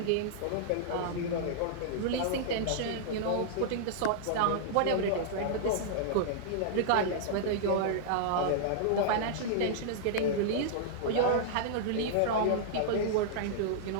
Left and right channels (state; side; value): different; both; correlation -0.02